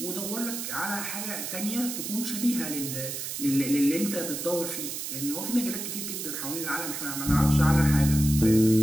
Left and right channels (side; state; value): right; noise; hiss, 5 dB below the sound